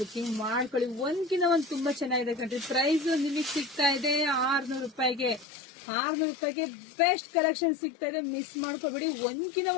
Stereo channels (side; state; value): right; drops out; at 5.5 s